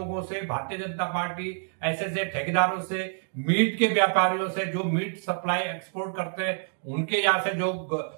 से, भारतीय जनता पार्टी ऐसे ठेकेदारों से, मीट के व्यापारियों से, जो मीट सप्लाई एक्सपोर्ट करते हैं, उनके यहाँ से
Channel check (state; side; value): silent; left; 60 dB below the other